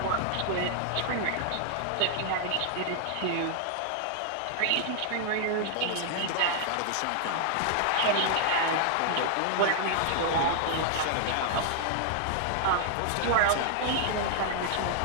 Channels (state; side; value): different; both; correlation -0.01